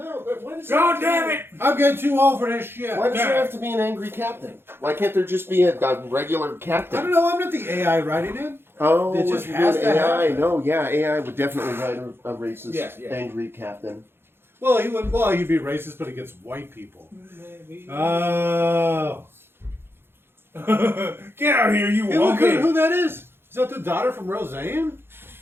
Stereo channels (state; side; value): late; left; 0.11 ms